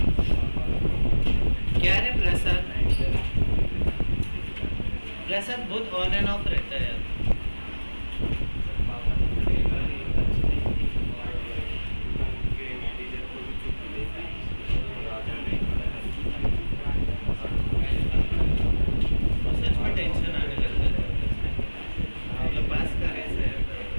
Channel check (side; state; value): both; inverted; correlation -1.00